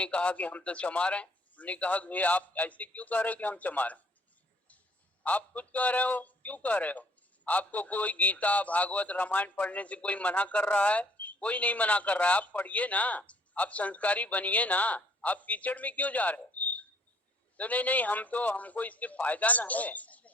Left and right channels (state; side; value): normal; both; correlation 0.61